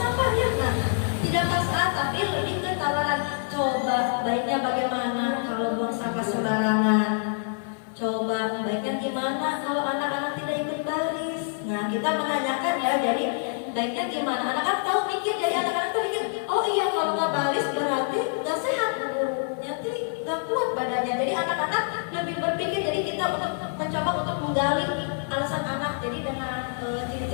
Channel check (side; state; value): right; silent; 57 dB below the other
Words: ya. Nah, tidak paksaan tapi lebih ke tawaran. Coba baiknya bagaimana kalau buang sampah sembarangan? Coba baiknya gimana kalau anak-anak tidak ikut baris? Nah, kita menanyakan ya. Jadi baiknya gimana? Anak-anak tahu mikir. Jadi anak-anak tuh mikir, oh iya kalau nggak baris berarti nggak sehat. Nanti nggak kuat badannya. Jadi anak-anak lebih berpikir. Jadi kita untuk mencoba untuk menggali alasan anak. Jadi dengan